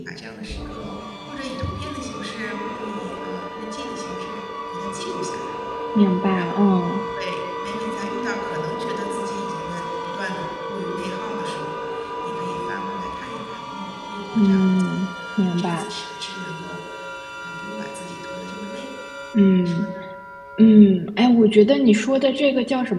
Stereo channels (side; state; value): both; identical; correlation 1.00